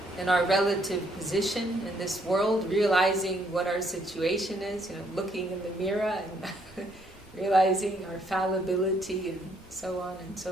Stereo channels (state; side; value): normal; both; correlation 0.70